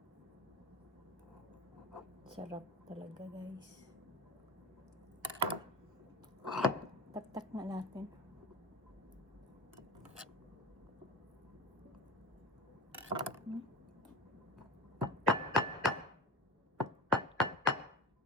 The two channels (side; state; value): both; normal; correlation 0.28